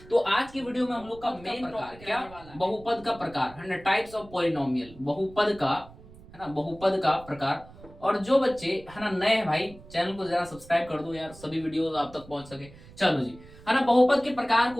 तो आज की वीडियो में हम लोग का मेन प्रकार क्या, बहुपद का प्रकार है ना, टाइप्स ऑफ पॉलिनोमियल, बहुपद का है ना, बहुपद का प्रकार। और जो बच्चे है ना नए हैं भाई, चैनल को जरा सब्सक्राइब कर दो यार, सभी वीडियोस आप तक पहुंच सके। चलो जी, है ना, बहुपद के प्रकार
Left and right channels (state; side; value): noise; right; rumble, 20 dB below the sound